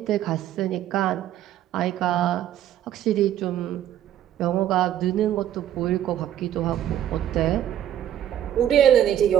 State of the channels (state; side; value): quieter; left; 11.2 dB